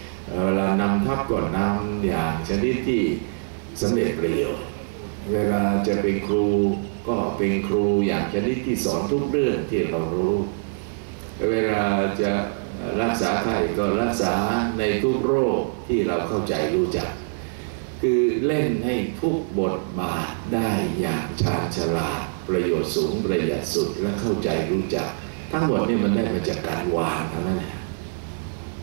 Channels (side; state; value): left; silent; digital silence